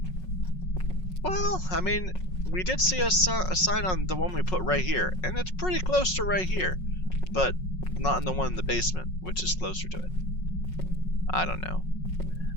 Well, I mean, we did see a sign on the one we put right here, and it's pretty close to right here, but not in the one in the basement, which is closer to it. I don't know.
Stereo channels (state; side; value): late; right; 5.5 ms